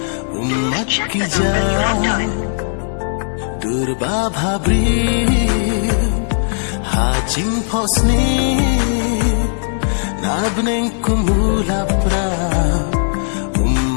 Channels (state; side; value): silent; right; digital silence